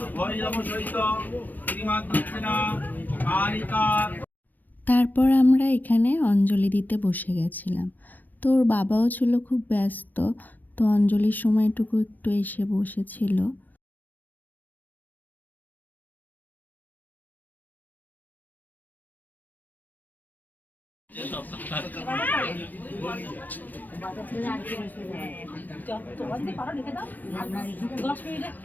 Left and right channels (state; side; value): late; right; 0.088 ms